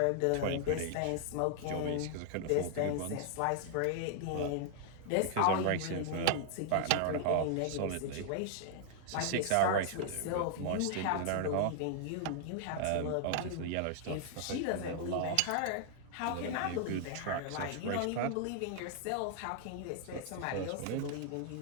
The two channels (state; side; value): different; both; correlation 0.00